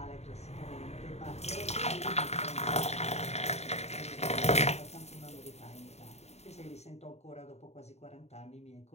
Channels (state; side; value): late; right; 0.31 ms